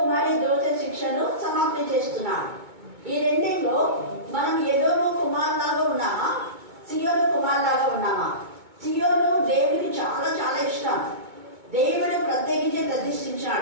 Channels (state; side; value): late; left; 2.2 ms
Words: దోష శిక్షను సమాప్తి చేస్తున్నాడు. ఈ రెండింటిలో మనం ఎదోము కుమార్ లాగా ఉన్నామా, సియోను కుమార్ లాగా ఉన్నామా? సియోను దేవుడికి చాలా చాలా ఇష్టం. దేవుడు ప్రత్యేకించి